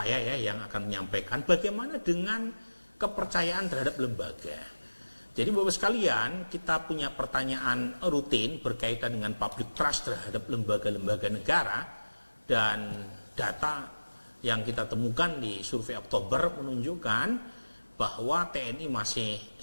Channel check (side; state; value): both; inverted; correlation -1.00